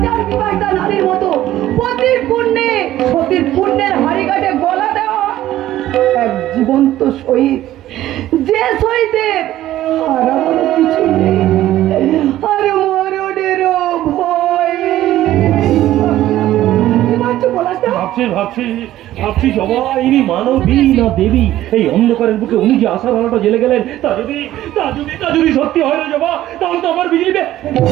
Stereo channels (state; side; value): quieter; left; 14.0 dB